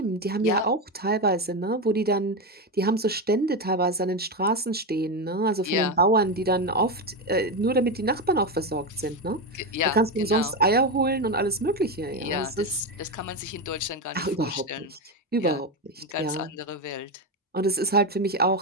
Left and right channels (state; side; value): normal; both; correlation 0.12